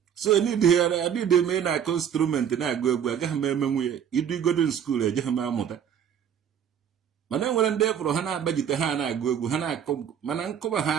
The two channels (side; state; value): left; quieter; 8.7 dB